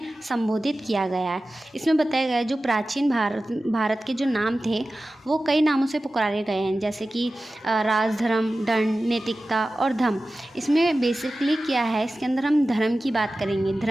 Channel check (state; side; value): normal; both; correlation 0.95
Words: संबोधित किया गया है। इसमें बताया गया है जो प्राचीन भारत के जो नाम थे वो कई नामों से पुकारे गए हैं, जैसे कि राज, धर्म, दंड, नैतिकता और धम। इसमें बेसिकली क्या है, इसके अंदर हम धर्म की बात करेंगे,